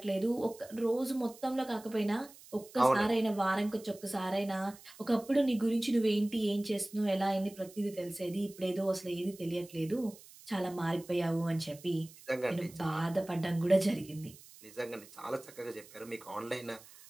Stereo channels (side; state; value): right; noise; hiss, 21 dB below the sound